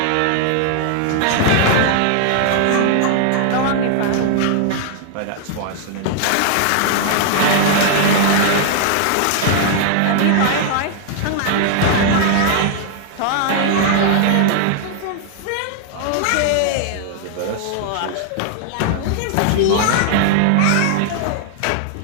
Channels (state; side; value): different; both; correlation 0.00